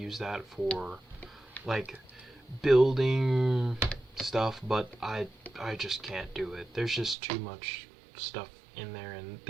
that for like building stuff, but I just can't do it. There's just too much stuff in there, and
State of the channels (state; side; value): drops out; left; at 7.2 s